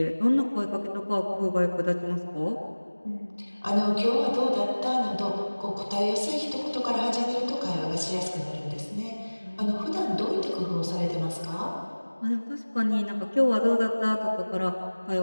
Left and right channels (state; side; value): inverted; both; correlation -1.00